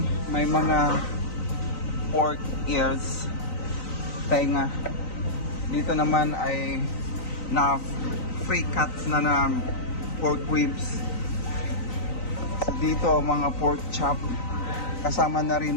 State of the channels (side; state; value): right; late; 3.9 ms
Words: may mga pork ears, tenga. Dito naman ay na free cuts na pork ribs. So dito mga pork chop, kasama na